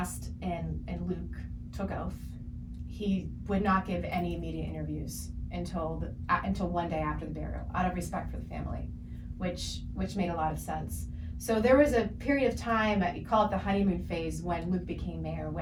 and Luke took oath, he would not give any media interviews until one day after the burial, out of respect for the family. Which made a lot of sense. So there was a period of time, you call it the honeymoon phase, when Luke became mayor,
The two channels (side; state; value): both; identical; correlation 1.00